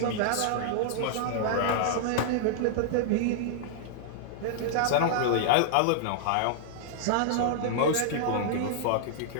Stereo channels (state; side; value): different; both; correlation -0.01